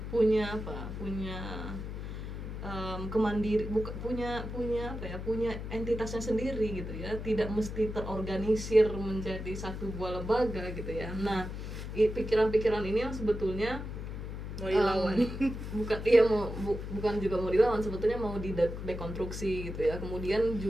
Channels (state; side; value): noise; left; hum, 7 dB below the sound